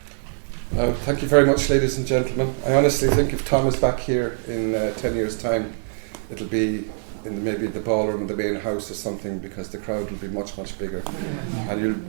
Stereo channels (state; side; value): silent; left; digital silence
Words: Thank you very much, ladies and gentlemen. I honestly think if Tom is back here in 10 years' time, it'll be in maybe the ballroom of the main house or something, because the crowd will be much, much bigger. And